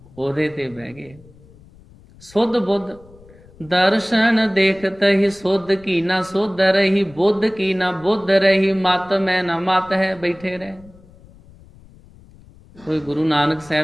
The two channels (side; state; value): left; noise; rumble, 25 dB below the sound